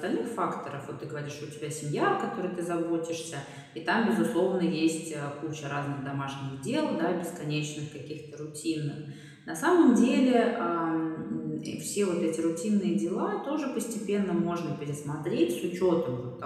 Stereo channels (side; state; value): both; identical; correlation 1.00